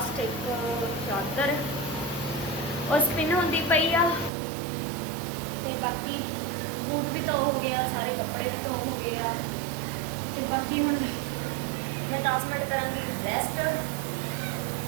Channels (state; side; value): drops out; left; at 4.3 s